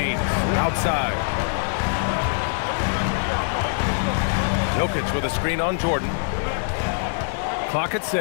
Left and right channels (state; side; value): silent; right; digital silence